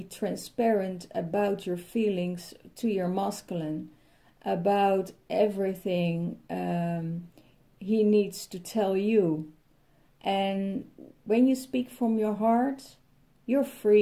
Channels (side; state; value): both; identical; correlation 1.00